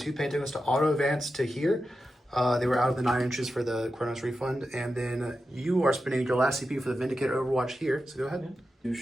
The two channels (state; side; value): normal; both; correlation 0.91